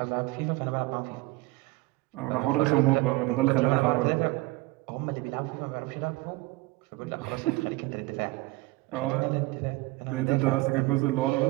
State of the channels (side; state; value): left; quieter; 20.7 dB